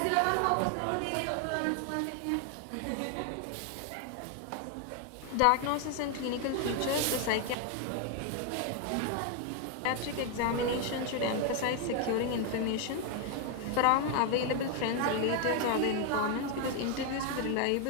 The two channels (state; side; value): different; both; correlation 0.01